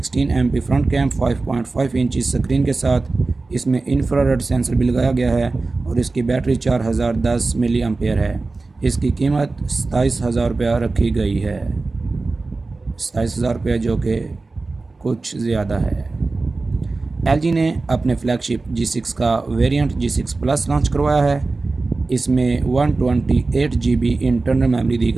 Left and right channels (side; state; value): left; quieter; 3.6 dB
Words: MP front cam, 5.5 inch screen کے ساتھ اس میں انفرارڈ سینسر بھی لگایا گیا ہے اور اس کی بیٹری 4010 ملی ایمپیئر ہے۔ اس کی قیمت 27,000 روپیہ رکھی گئی ہے، 27,000 روپیہ جو کہ کچھ زیادہ ہے۔ LG نے اپنے فلیگ شپ G6 کا ویریئنٹ G6 پلس لانچ کروایا ہے۔ اس میں 128 GB انٹرنل میموری دی